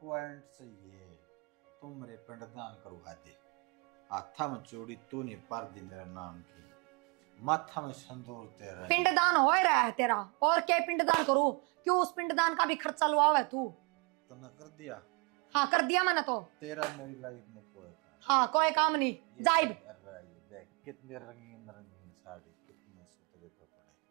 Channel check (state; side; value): quieter; left; 31.7 dB